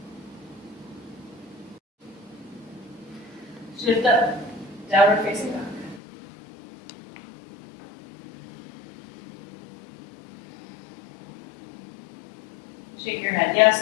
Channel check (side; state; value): right; drops out; at 6.0 s